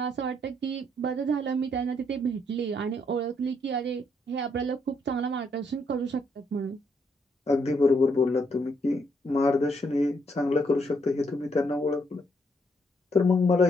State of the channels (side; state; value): both; normal; correlation 0.73